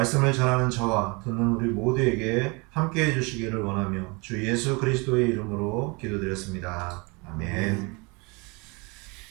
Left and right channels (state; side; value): quieter; left; 28.6 dB